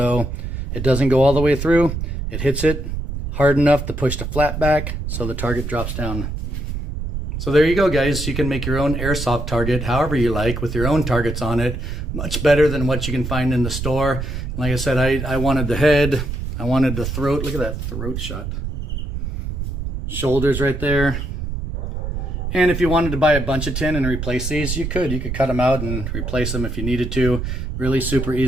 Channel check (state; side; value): noise; right; rumble, 4 dB below the sound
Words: it doesn't go all the way through. It hits it hard enough to push the flap back so the target drops down. So there you go, guys. You can make your own airsoft target however you like with your own targets on it. Much better than what you can find in the store. Like I said, I wanted the head. I wanted the throat. Look at that throat shot. Shoulders right there. And if you wanted to buy a bunch of tin and replace these, you could. You could cut them out and replace them if you needed to. Really super